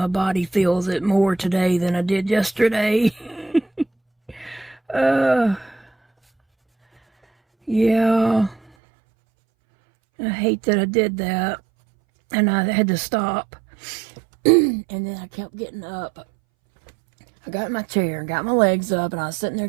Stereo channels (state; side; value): drops out; left; at 8.6 s